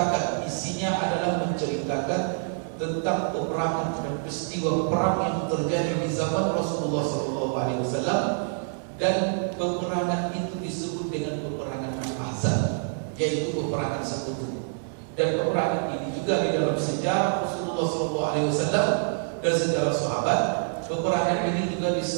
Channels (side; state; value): left; silent; digital silence